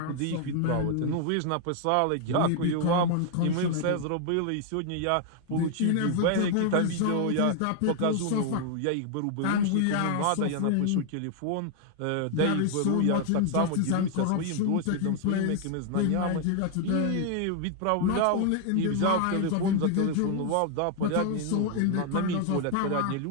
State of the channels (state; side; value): different; both; correlation 0.00